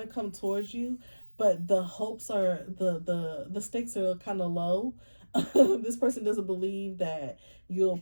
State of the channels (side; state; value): both; inverted; correlation -1.00